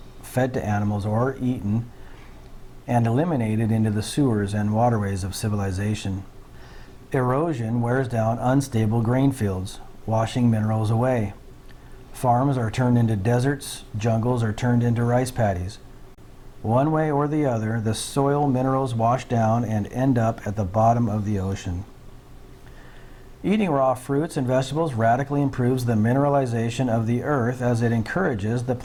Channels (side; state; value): both; identical; correlation 1.00